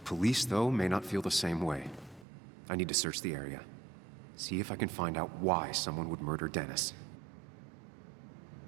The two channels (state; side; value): drops out; left; at 2.2 s